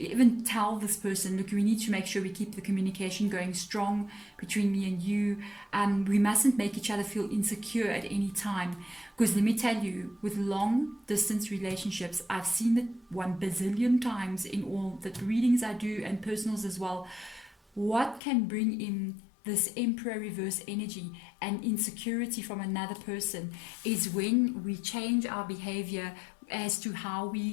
tell this person, look, we need to make sure we keep the communication going strong between me and you. We mustn't make each other feel insecure at any time. Because let me tell you, with long distance relationships, I've seen it 1 bazillion times in all the readings I do and personals as well. What can bring in this Emperor reverse energy and insecurity from another person is when we change our behavior as to how we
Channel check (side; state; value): right; drops out; at 18.2 s